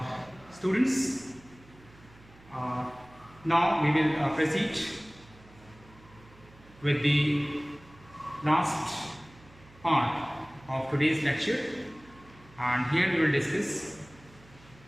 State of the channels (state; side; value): noise; right; hum, 24 dB below the sound